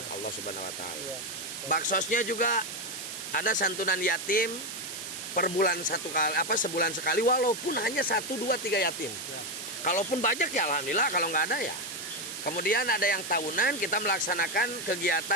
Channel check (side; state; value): right; noise; hiss, 8 dB below the sound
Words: Allah Subhanahu wa taala. Baksosnya juga ada santunan yatim per bulan sebulan sekali, walaupun hanya 1, 2, 3 yatim. Kalaupun banyak ya alhamdulillah, kalau nggak ada ya. Kemudian ada yang tahunan kita melaksanakan